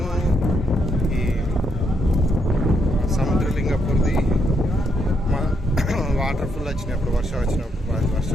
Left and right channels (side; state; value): both; normal; correlation 0.77